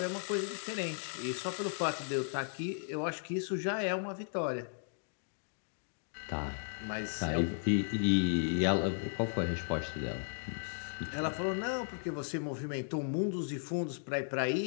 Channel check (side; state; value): right; silent; digital silence